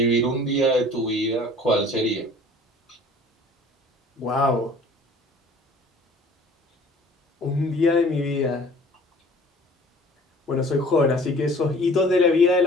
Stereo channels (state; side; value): normal; both; correlation 0.49